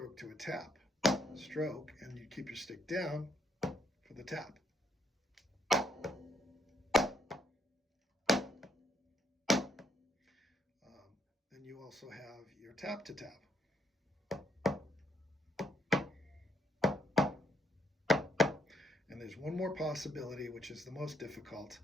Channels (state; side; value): normal; both; correlation 0.73